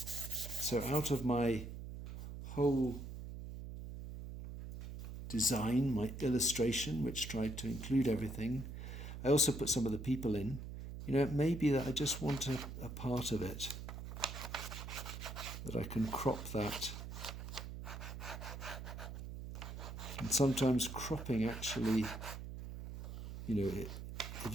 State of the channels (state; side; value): noise; right; hum, 8 dB below the sound